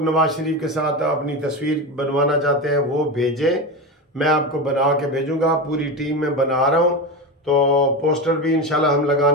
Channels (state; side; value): normal; both; correlation 0.20